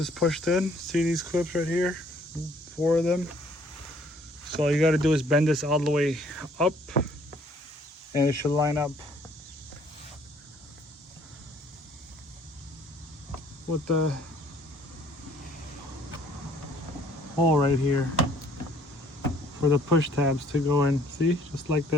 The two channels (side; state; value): both; normal; correlation 0.60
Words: pushed in, see these clips right here, 4 of them. So all you got to do is bend this all the way up, and it should line up with the hole right here for the push tabs to go in. See, just like